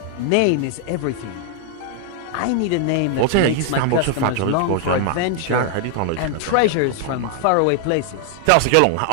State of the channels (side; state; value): both; different; correlation 0.00